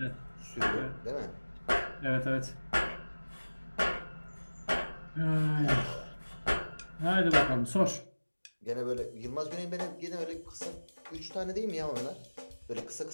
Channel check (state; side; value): inverted; both; correlation -1.00